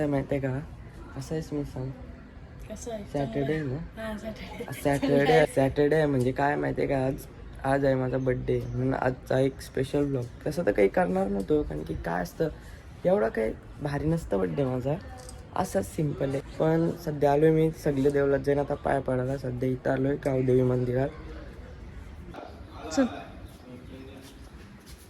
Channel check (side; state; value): both; identical; correlation 1.00